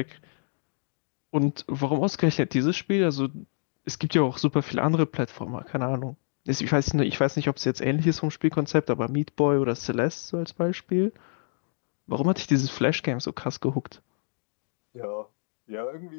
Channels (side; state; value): right; silent; digital silence